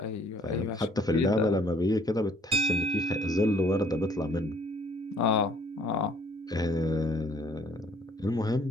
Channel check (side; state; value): both; normal; correlation 0.60